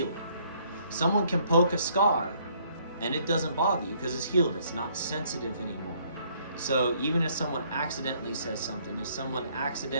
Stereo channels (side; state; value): both; inverted; correlation -0.65